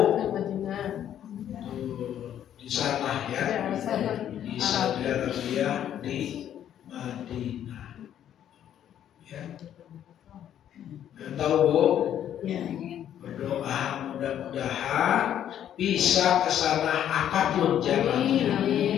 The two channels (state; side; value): quieter; right; 10.4 dB